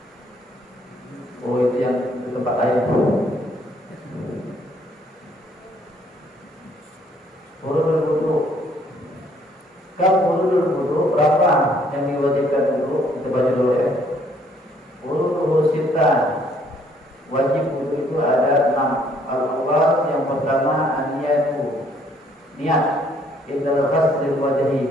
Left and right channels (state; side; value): normal; both; correlation 0.64